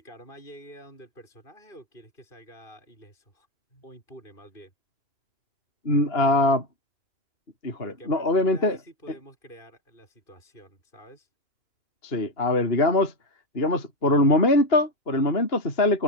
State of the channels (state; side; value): late; right; 2.8 ms